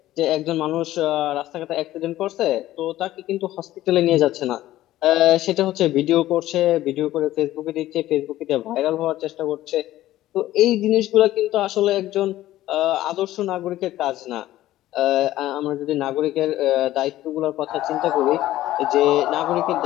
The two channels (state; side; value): quieter; right; 14.8 dB